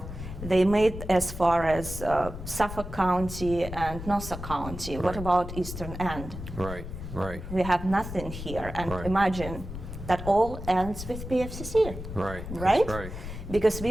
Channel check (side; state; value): left; noise; rumble, 9 dB below the sound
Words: they made as far as Suffolk County and Nassau County. What Right. about Eastern End? Right. Right. We have nothing here, and Right. imagine that all ends with PFCC. Right. Right? That's right. Because